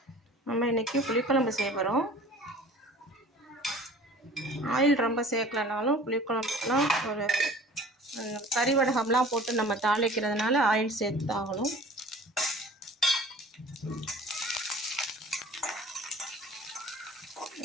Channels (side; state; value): both; normal; correlation 0.45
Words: நம்ம இன்றைக்கி புளிக்குழம்பு செய்ய போகிறோம். ஆயில் ரொம்ப சேர்க்கலனாலும் புளிக்குழம்புலாம் ஒரு கறி வடகம்லாம் போட்டு நம்ம தாளிக்கிறதுனால ஆயில் சேர்த்து ஆகணும்.